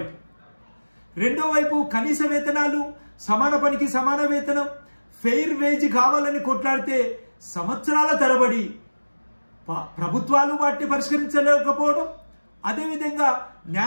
రెండో వైపు కనీస వేతనాలు, సమాన పనికి సమాన వేతనం, ఫెయిర్ వేజ్ కావాలని కొట్లాడితే సంవత్సరాల తరబడి ప్రభుత్వాలు వాటిని పరిష్కరించలేకపోవడం, అదేవిధంగా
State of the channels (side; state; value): both; inverted; correlation -1.00